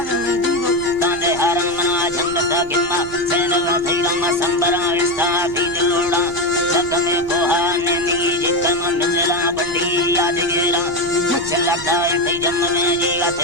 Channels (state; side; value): noise; right; rumble, 18 dB below the sound